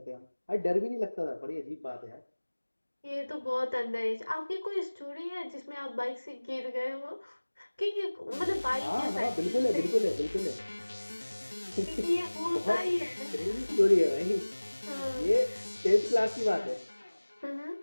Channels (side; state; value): both; inverted; correlation -1.00